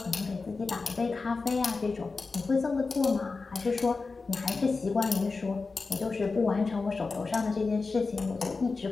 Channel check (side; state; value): right; quieter; 4.1 dB